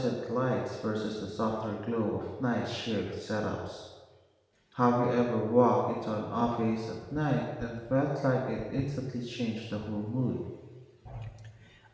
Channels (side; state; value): both; identical; correlation 1.00